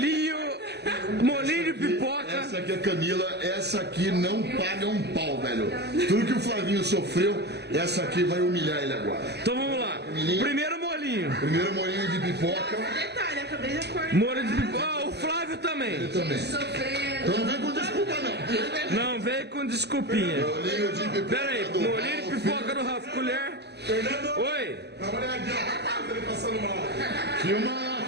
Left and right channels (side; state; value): left; late; 0.49 ms